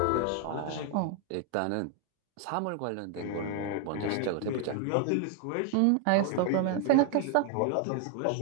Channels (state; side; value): different; both; correlation 0.00